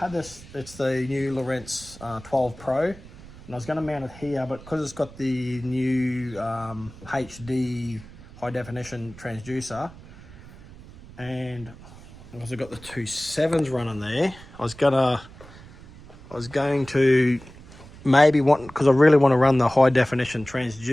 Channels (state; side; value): noise; right; rumble, 19 dB below the sound